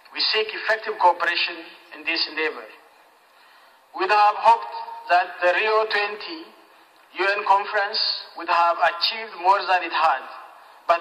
We seek effective cooperation in this endeavor. We have hoped that the Rio 20 UN conference would have achieved more than it had,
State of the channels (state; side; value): identical; both; correlation 1.00